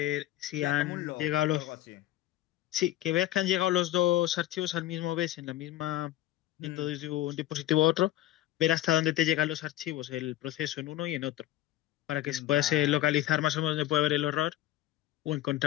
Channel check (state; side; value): quieter; right; 14.4 dB